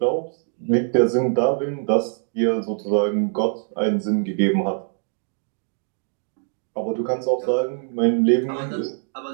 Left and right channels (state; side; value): silent; left; 63 dB below the other